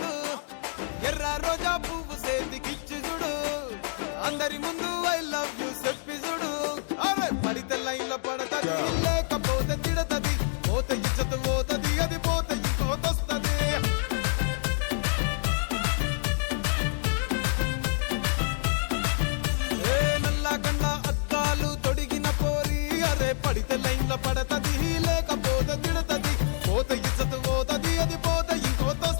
ఎర్ర రోజా పువ్వు సేతికిచ్చి చూడు అందరి ముందు ఐ లవ్ యూ చెప్పి చూడు అరే పడితే లైన్ లో పడతది లేకపోతే తిడతది పోతే ఇచ్చత పోతది అది పోతే ఇంకోతొస్తది నల్లగండ అద్దాలు తొడిగిన పోరి అరే పడితే లైన్ లో పడతది లేకపోతే తిడతది పోతే ఇచ్చత పోతది అది పోతే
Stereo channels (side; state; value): right; silent; 60 dB below the other